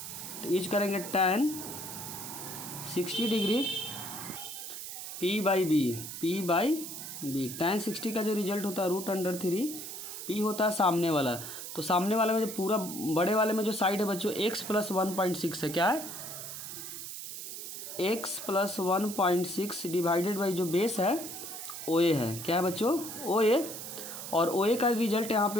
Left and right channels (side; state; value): right; noise; hiss, 8 dB below the sound